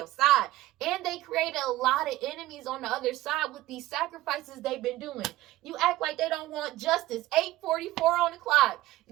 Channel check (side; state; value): left; quieter; 16.5 dB